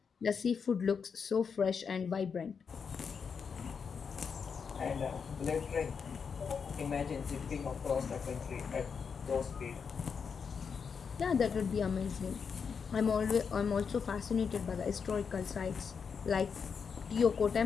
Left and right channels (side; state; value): right; quieter; 6.1 dB